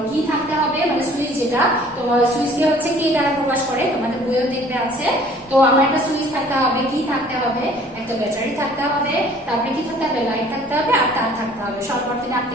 কি থাকতে হবে, মানে সুইচ, যেটা তোমার সুইচকে হচ্ছে কি দ্বারা প্রকাশ করে, তোমাদের বইও দেখবে আছে। তো আমার একটা সুইচ থাকতে হবে, কি থাকতে হবে, একটা ব্যাটারি থাকতে হবে, তারপরে কি থাকতে হবে, লাইট থাকতে হবে, আর তার থাকতে হবে। সরল বর্তনী আঁকতে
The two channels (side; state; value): both; normal; correlation 0.53